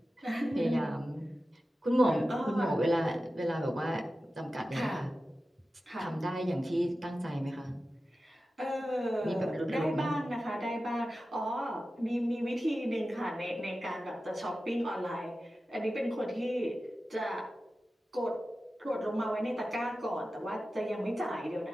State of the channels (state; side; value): normal; both; correlation 0.94